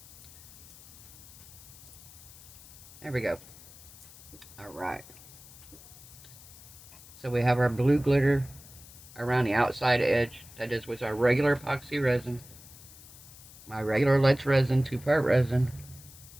There we go. Alright. So we have our blue glitter around the outside edge. That is with our regular epoxy resin. My regular Let's resin, 2-part resin.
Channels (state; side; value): noise; left; hiss, 19 dB below the sound